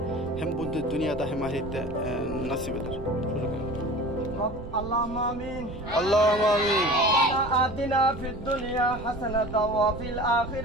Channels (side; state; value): right; noise; rumble, 12 dB below the sound